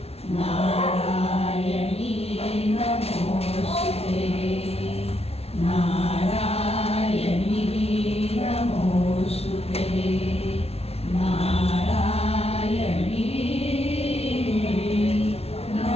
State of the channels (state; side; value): late; right; 0.30 ms